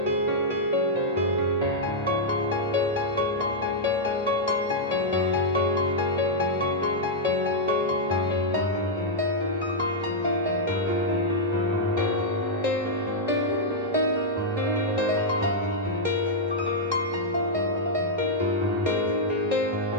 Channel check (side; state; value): both; normal; correlation -0.06